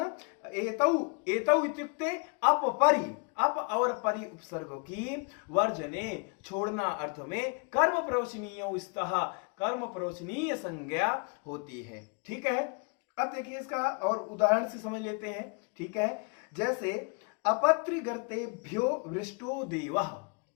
एतौ एतौ इत्युक्ते अपपरि, अप और परि उपसर्गों की वर्जने छोड़ना अर्थ में कर्म प्रवचनीय स्तः, कर्म प्रवचनीय संज्ञा होती है, ठीक है। अब देखिए इसका और उदाहरण से समझ लेते हैं, ठीक है। जैसे अपत्रिगर्तेभ्यो वृष्टो देवः,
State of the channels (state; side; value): quieter; right; 35.1 dB